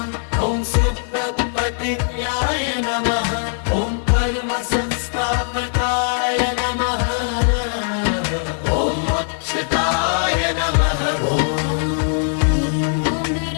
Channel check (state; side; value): silent; right; digital silence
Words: ॐ सुप्रपतिर्याय नमः ॐ परमसंस्थापकाय नमः ॐ मोक्षदाय नमः